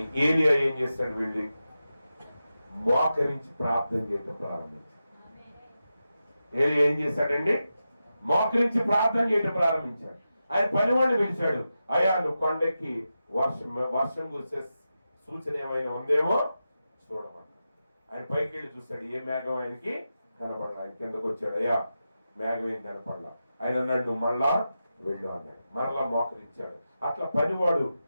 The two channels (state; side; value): inverted; both; correlation -0.90